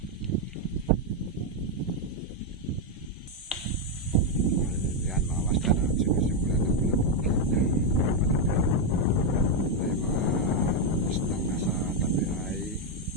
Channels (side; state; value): both; normal; correlation 0.02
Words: Yan mga master, sinisimulan na bulabugin. Yung mga islang nasa tabi ay